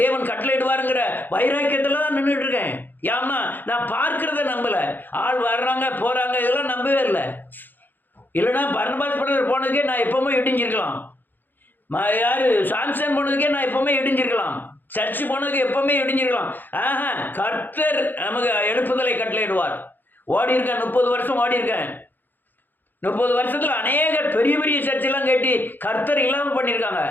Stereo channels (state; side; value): late; right; 0.090 ms